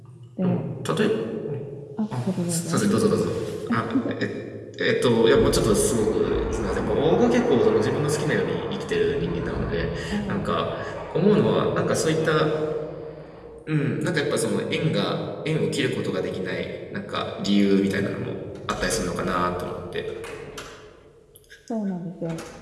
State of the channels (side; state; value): both; identical; correlation 1.00